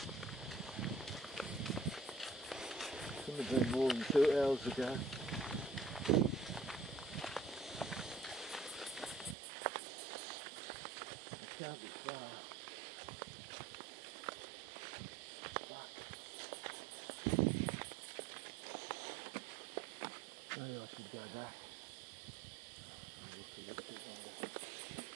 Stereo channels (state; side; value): drops out; left; at 9.3 s